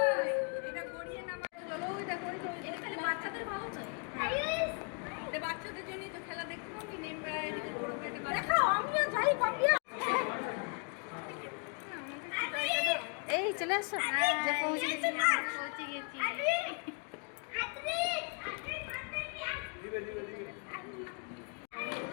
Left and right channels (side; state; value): right; quieter; 39.5 dB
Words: এই চলে আসো, যে পৌঁছে গেছি, পৌঁছে গেছি।